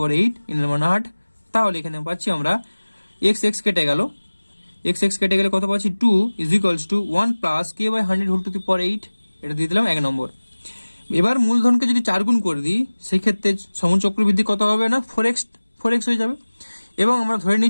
8, n এর মান 8। তাহলে এখানে পাচ্ছি আমরা x কেটে গেল, x কেটে গেলে কত পাচ্ছি, 2 is equals to 1 plus k by 100 whole to the power 8, এটা দিয়ে দিলাম 1 নম্বর। এবার মূলধনকে যদি 4 গুণ করে দিই, সেই ক্ষেত্রে সমূল চক্রবৃদ্ধি কত হবে না, 4x হয়ে যাবে, এবং আমরা ধরে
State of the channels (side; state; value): both; inverted; correlation -1.00